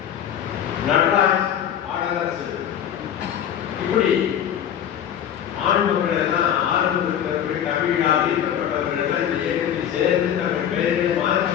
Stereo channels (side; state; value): right; quieter; 9.7 dB